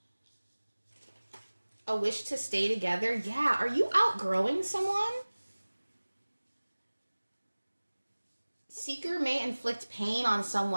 A wish to stay together. Yeah, are you outgrowing someone? Seeker may inflict pain on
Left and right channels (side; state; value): both; inverted; correlation -1.00